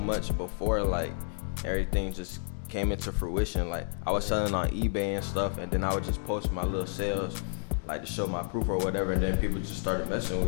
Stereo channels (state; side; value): silent; right; 58 dB below the other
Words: before, like, everything just came into fruition. Like, I was selling on eBay and stuff, and then I would just post my little sales, like, to show my proof or whatever, and then people just started messing